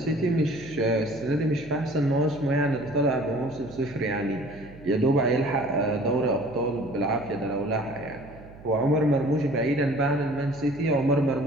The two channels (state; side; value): noise; right; hum, 19 dB below the sound